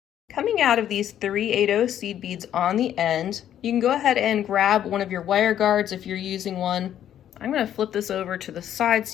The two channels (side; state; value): right; quieter; 10.7 dB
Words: Coming out of these 3 8/0 seed beads on the end, you can go ahead and grab one of your wire guards if you're using one. I'm going to flip this over to the side